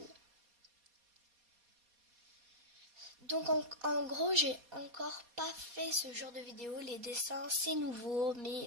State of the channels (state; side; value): late; left; 4.2 ms